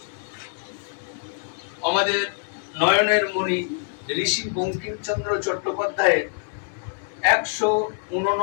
আমাদের নয়নের মণি ঋষি বঙ্কিমচন্দ্র চট্টোপাধ্যায়ের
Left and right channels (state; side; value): silent; right; digital silence